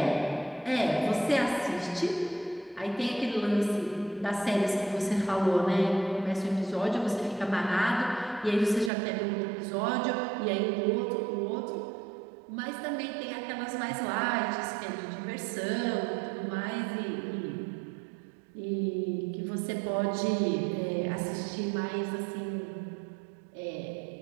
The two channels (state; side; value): drops out; left; at 8.9 s